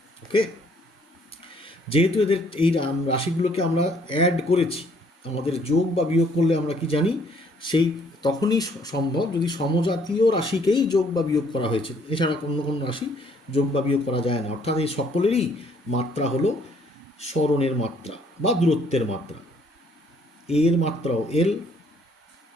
Okay, যেহেতু এদের এই রাশিগুলোকে আমরা অ্যাড করেছি, আমাদের যোগ বা বিয়োগ করলে আমরা কি জানি, সেই তখনই সম্ভব যদি সমজাতীয় রাশিকেই যোগ বা বিয়োগ করা হয়েছে, এছাড়া অন্য কোনো রাশি যোগ বা বিয়োগ করা যায় না। অর্থাৎ এই সকলেরই মাত্রা হলো সরণের মাত্রা বা দূরত্বের মাত্রা। এ এর মাত্রাও এল,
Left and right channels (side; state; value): both; normal; correlation 0.64